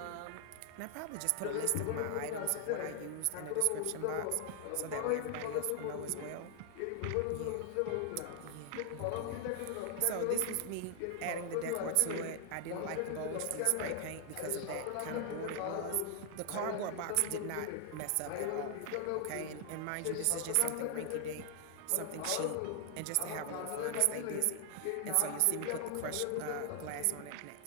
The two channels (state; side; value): different; both; correlation 0.00